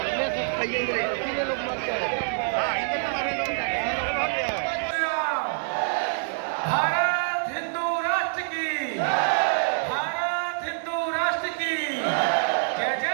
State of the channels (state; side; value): silent; left; digital silence